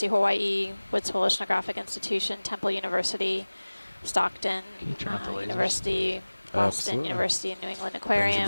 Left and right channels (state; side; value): inverted; both; correlation -1.00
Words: of Hawaii, Woods Hole Oceanographic Institution, Temple University, Stockton University, Boston University, New England